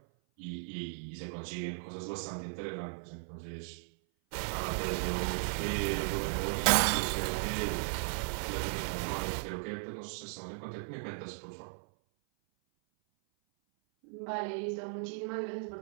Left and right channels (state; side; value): silent; left; 54 dB below the other